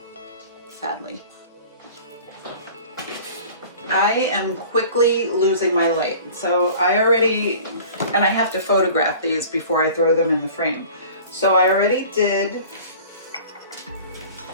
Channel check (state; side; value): inverted; both; correlation -0.44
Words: sadly. I am quickly losing my light. So I have to photograph these before I throw them in the frame. So I already